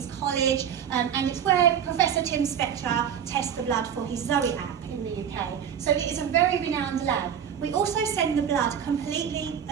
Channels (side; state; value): left; quieter; 8.5 dB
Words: College, and it's where Professor Tim Spector tests the blood for his Zoe app in the UK. So it is a very renowned lab. We also send the blood completely